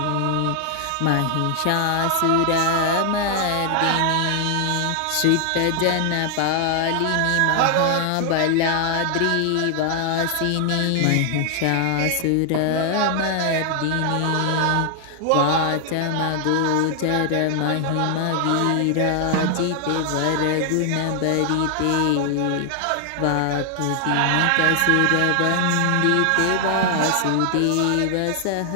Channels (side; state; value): both; different; correlation 0.00